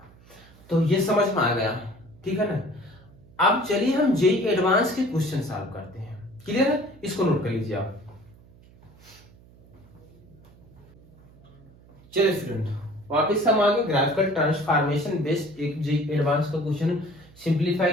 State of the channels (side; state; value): right; noise; hum, 25 dB below the sound